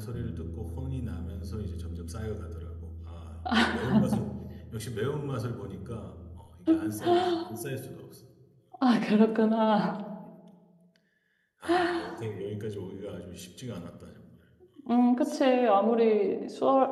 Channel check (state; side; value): identical; both; correlation 1.00